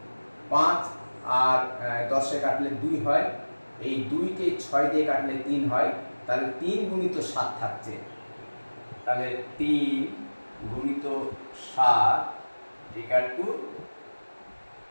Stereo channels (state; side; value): inverted; both; correlation -1.00